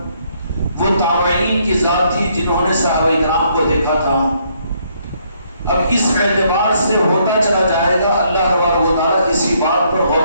وہ تابعین کی ذات تھی جنہوں نے صحابہ کرام کو دیکھا تھا۔ اب اس اعتبار سے ہوتا چلا جائے گا، اللہ تبارک و تعالیٰ اسی بات پر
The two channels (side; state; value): both; inverted; correlation -0.70